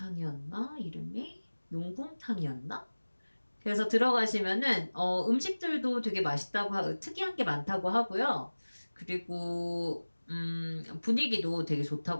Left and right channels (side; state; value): both; inverted; correlation -1.00